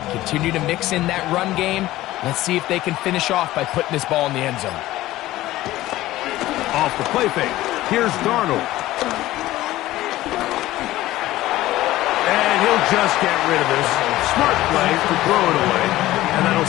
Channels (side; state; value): right; quieter; 16.1 dB